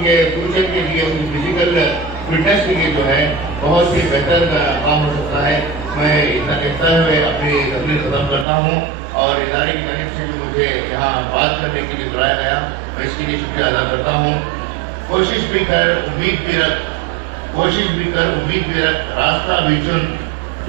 फ्यूचर के लिए, उनकी फिजिकल फिटनेस के लिए जो है बहुत ही बेहतर काम हो सकता है। मैं इतना कहता हुए अपनी तकरीर खत्म करता हूँ और इदारे की तरफ से भी मुझे यहाँ बात करने के लिए बुलाया गया, मैं इसके लिए शुक्रिया अदा करता हूँ। कोशिश भी कर उम्मीद भी रख, रास्ता भी चुन,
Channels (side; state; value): left; drops out; at 8.5 s